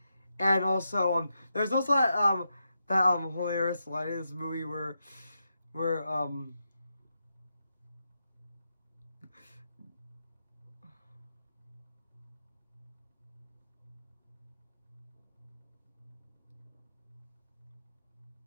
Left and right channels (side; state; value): both; inverted; correlation -0.85